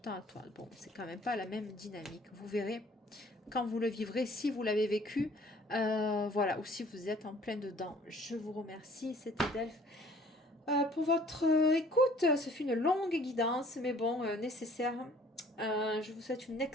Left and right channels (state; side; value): normal; both; correlation 0.55